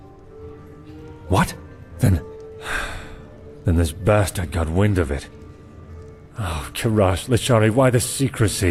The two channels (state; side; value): identical; both; correlation 1.00